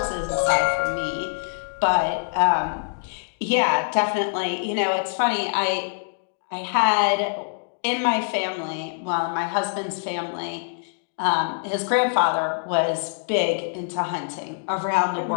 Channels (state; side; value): silent; right; digital silence